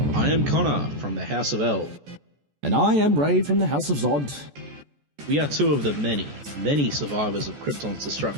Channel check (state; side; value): late; left; 14 ms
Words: I am Connor from the House of L. And I am Ray from the House of Zod. We are two of the many, many survivors of Krypton's